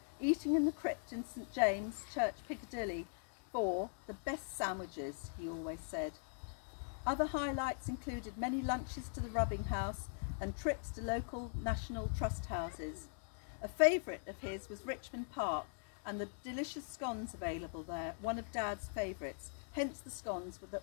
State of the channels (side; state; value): right; silent; digital silence